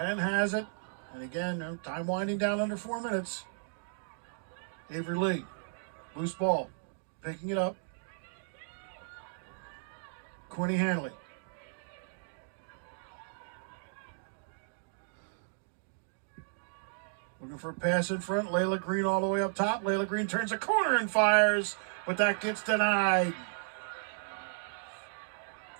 has it. And again, time winding down under 4 minutes. Avery Lee, loose ball, picking it up. Quinny Hanley. Looking for a pass in front. Layla Green all the way up top. Layla Green turns a corner and fires, but that gets denied.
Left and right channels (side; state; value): left; silent; digital silence